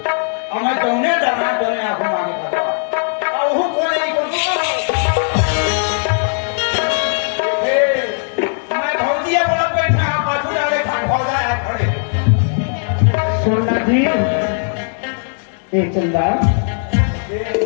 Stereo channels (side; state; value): right; silent; digital silence